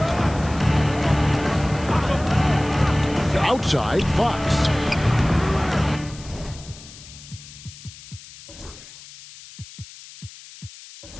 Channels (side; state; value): left; noise; hiss, 18 dB below the sound